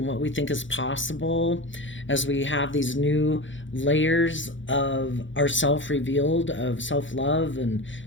what we think is possible as we have these new layers of ourself revealed, of self-love and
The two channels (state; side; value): late; right; 0.55 ms